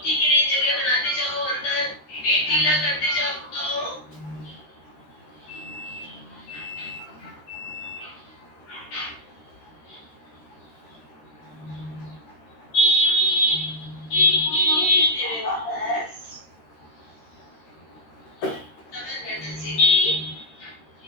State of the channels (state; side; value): late; right; 13 ms